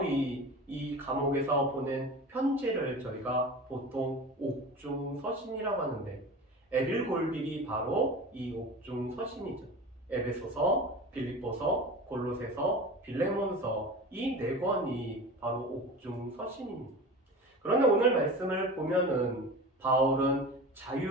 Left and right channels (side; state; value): both; normal; correlation 0.34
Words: 이 감옥에서 보낸 편지를 저희가 보통 옥중서신이라고 하는데 에빌골빌이 바로 이 옥중서신이죠. 에베소서, 빌립보서, 골로새서, 빌레몬서 이 네 권이 바로 옥중서신입니다. 그런데 오늘 말씀을 보면은 바울은